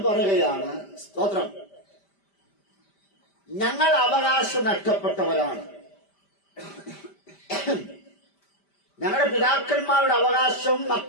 പറയുകയാണ്, സ്തോത്രം, ഞങ്ങൾ അവകാശം നഷ്ടപ്പെട്ടവരാണ്. ഞങ്ങളുടെ പിതാക്കന്മാരുടെ അവകാശം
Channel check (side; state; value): right; late; 5.1 ms